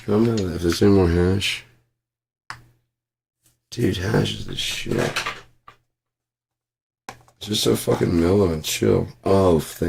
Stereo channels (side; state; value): both; identical; correlation 1.00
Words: don't know if there's any more hash. Dude, hash is the shit. It's just so fucking mellow and chill. Oh,